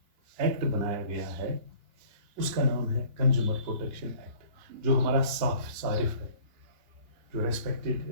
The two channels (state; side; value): late; left; 2.9 ms